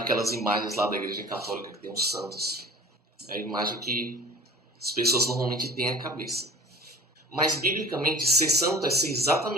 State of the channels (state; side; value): normal; both; correlation 0.44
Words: imagens lá da Igreja Católica que tem os santos. É a imagem que as pessoas normalmente têm à cabeça. Mas, biblicamente, ser santo é ser